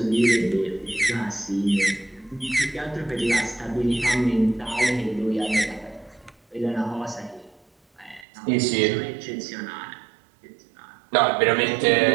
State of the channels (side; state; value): left; drops out; at 8.2 s